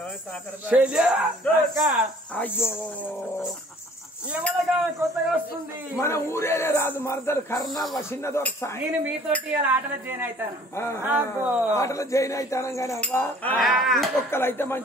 శల్య? అయ్యో కొత్తగా వస్తుంది మన ఊరేనే రాదు మరదలు కర్ణ చిన్న దొరక. నేను మీతోటి ఆటలో జాయిన్ అవుతాను. ఆటలో జాయిన్ అవుతాను కానీ అవ్వా ఇంకొక్కలు అయితే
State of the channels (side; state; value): both; normal; correlation 0.53